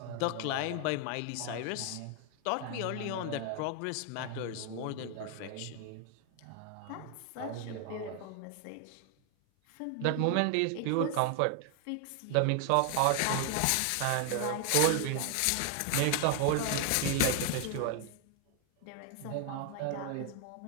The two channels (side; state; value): both; different; correlation 0.00